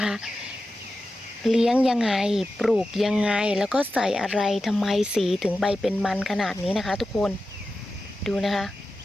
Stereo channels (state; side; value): normal; both; correlation 0.93